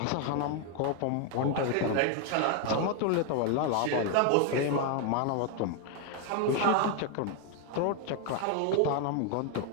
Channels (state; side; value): different; both; correlation 0.01